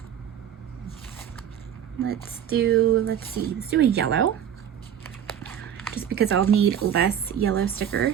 Let's do a yellow. Just because I'll need less yellow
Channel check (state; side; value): quieter; left; 9.4 dB